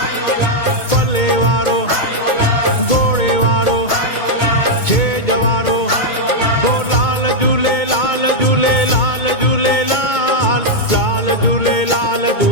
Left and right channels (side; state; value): right; late; 2.2 ms